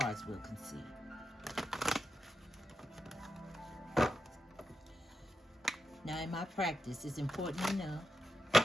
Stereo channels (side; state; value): both; normal; correlation 0.87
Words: will concede. Now in my practice, it's important to know